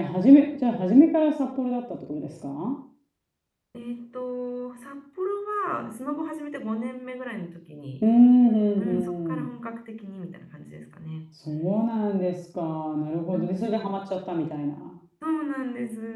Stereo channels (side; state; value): both; identical; correlation 1.00